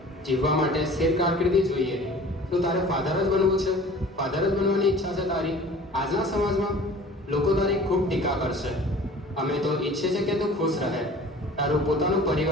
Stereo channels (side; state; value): both; normal; correlation 0.45